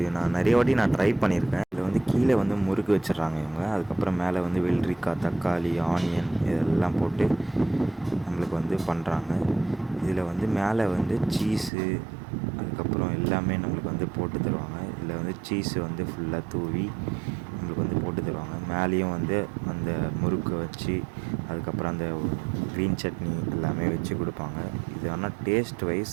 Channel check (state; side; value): drops out; left; at 11.7 s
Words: நான் நிறைய வாட்டி ட்ரை பண்ணியிருக்கேன். இதில் வந்து கீழே வந்து முறுக்கு வச்சிடுறாங்க இவங்க. அதுக்கப்புறம் மேலே வந்து வெள்ளரிக்காய், தக்காளி, ஆனியன் இதெல்லாம் போட்டு நம்மளுக்கு வந்து பண்ணுறாங்க. இதில் வந்து மேலே வந்து சீஸு அதுக்கப்புறம் எல்லாமே நம்மளுக்கு வந்து போட்டு தருவாங்க. இதில் வந்து சீஸு வந்து ஃபுல்லாக தூவி நம்மளுக்கு வந்து போட்டு தருவாங்க. மேலேயும் வந்து அந்த முறுக்கை வச்சு அதுக்கப்புறம் அந்த க்ரீன் சட்னி எல்லாமே வச்சு கொடுப்பாங்க. இது ஆனால் டேஸ்ட்